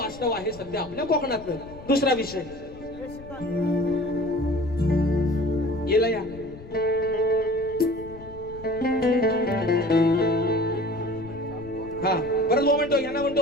आहे सध्या आपल्या कोकणातलं. दुसरा विषय येला या हा परत बुवा म्हणतो, यांना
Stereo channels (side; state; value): left; noise; rumble, 18 dB below the sound